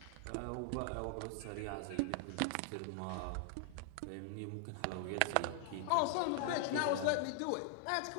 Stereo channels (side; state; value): both; different; correlation 0.00